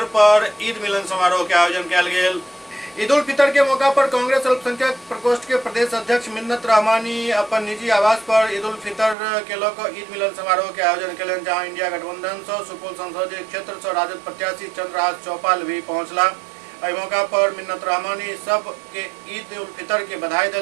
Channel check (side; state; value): left; drops out; at 9.2 s